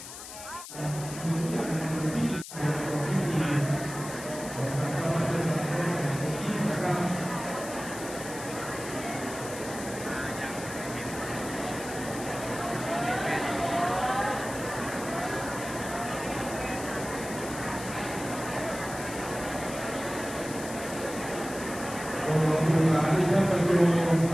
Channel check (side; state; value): left; noise; hiss, 11 dB below the sound